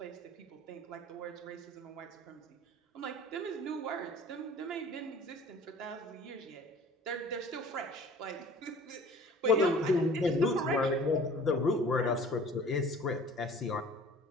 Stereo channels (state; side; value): normal; both; correlation 0.47